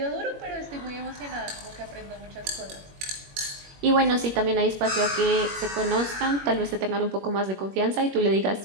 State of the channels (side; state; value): left; late; 21 ms